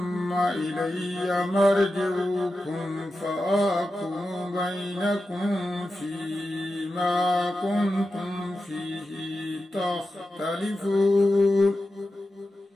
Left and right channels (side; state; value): both; normal; correlation 0.91